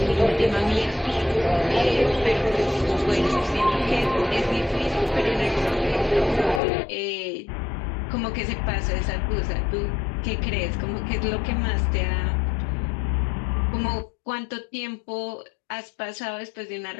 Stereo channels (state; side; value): drops out; right; at 6.6 s